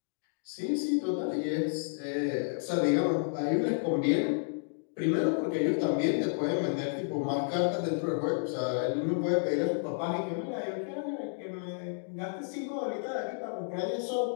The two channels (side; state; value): right; silent; digital silence